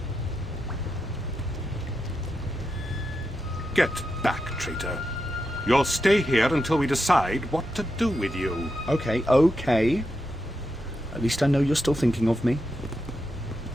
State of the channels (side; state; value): both; normal; correlation 0.86